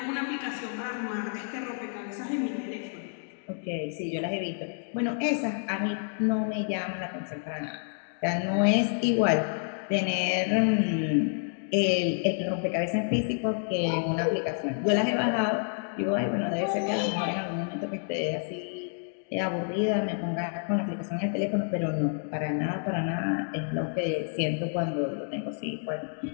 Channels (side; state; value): right; silent; 59 dB below the other